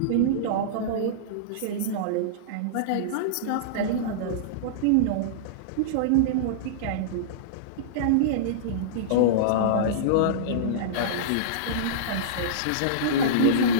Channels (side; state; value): both; different; correlation -0.03